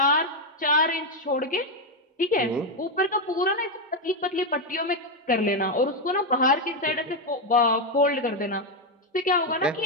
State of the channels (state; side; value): normal; both; correlation 0.05